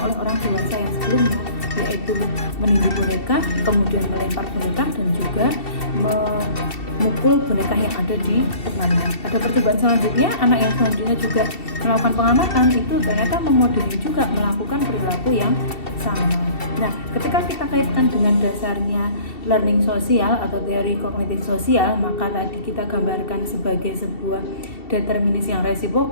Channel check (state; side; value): late; right; 2.7 ms